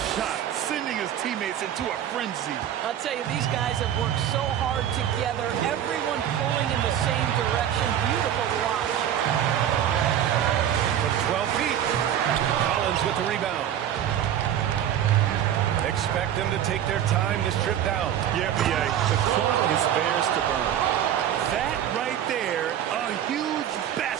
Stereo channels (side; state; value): left; quieter; 10.4 dB